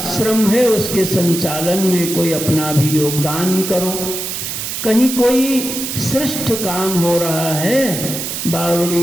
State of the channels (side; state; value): right; noise; hiss, 5 dB below the sound